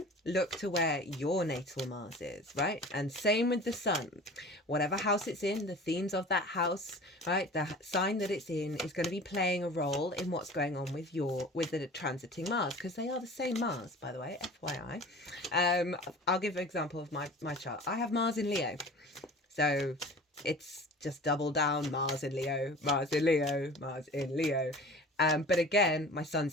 look to where your natal Mars is, right? And same with the Sun. Whatever house it's in, the themes of that house, right? The sign that it's in is going to be playing a role in what's going on with the transiting Mars, because they are the same Mars, by the way, FYI. I'll give an example of my chart. I have Mars in Leo. So it's just double down, Mars in Leo, Mars in Leo, Mars in Leo. But again, my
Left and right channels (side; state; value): both; normal; correlation 0.40